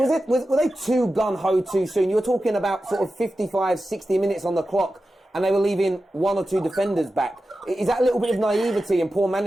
they too gun-ho too soon? You were talking about sort of 55, 60 minutes on the clock, and they were leaving 1 or 2 defenders back. Is that a little bit of naivety and poor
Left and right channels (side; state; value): both; normal; correlation 0.93